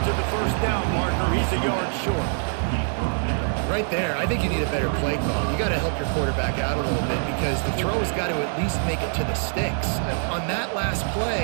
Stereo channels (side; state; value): left; silent; digital silence